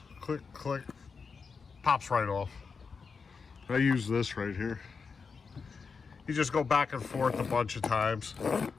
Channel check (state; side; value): quieter; right; 5.2 dB